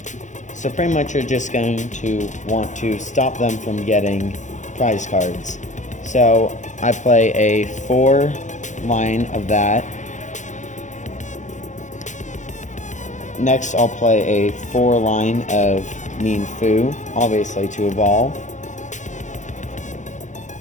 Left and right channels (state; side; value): late; right; 0.35 ms